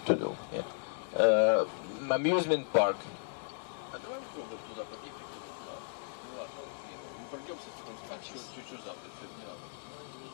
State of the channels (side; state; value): right; silent; 54 dB below the other